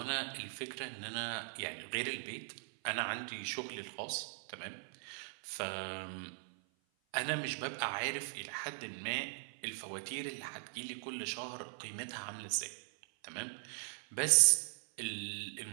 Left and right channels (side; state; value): left; silent; 51 dB below the other